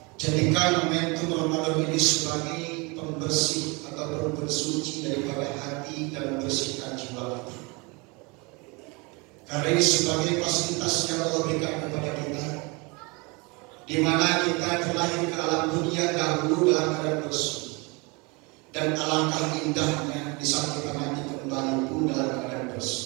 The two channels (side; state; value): left; quieter; 28.1 dB